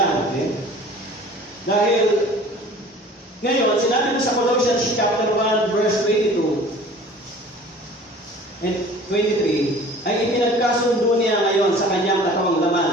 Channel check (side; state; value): both; normal; correlation 0.46